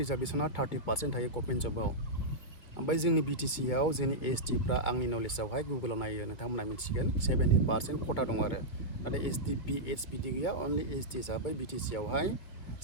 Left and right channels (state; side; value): late; right; 2.5 ms